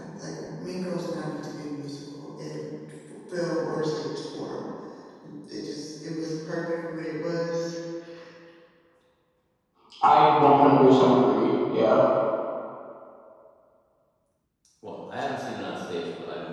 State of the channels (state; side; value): identical; both; correlation 1.00